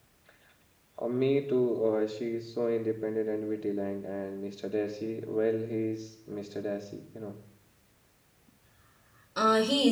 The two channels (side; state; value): both; identical; correlation 1.00